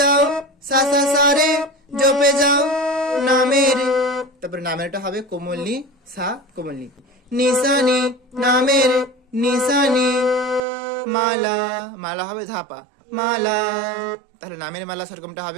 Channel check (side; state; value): left; drops out; at 10.6 s